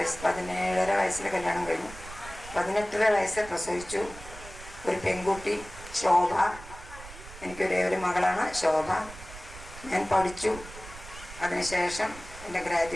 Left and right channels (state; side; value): noise; right; rumble, 15 dB below the sound